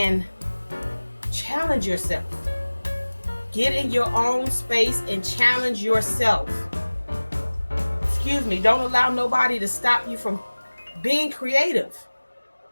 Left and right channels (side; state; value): both; inverted; correlation -1.00